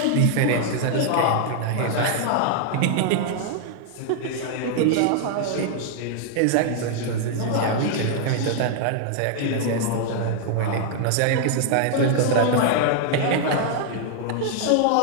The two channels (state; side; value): different; both; correlation -0.01